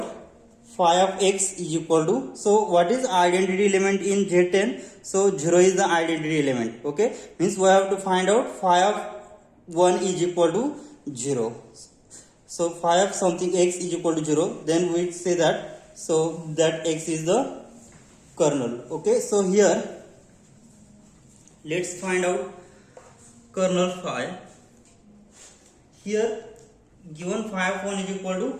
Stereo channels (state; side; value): identical; both; correlation 1.00